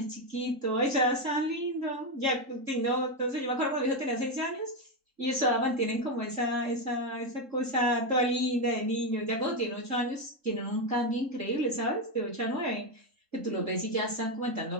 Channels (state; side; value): late; left; 3.7 ms